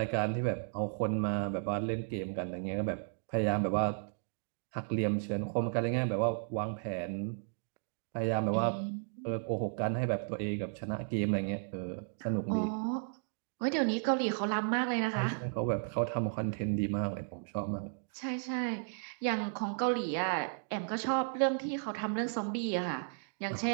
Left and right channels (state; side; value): silent; left; digital silence